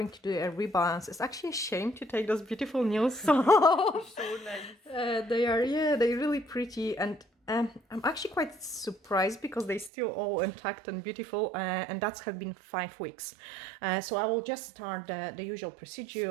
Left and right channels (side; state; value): left; drops out; at 9.9 s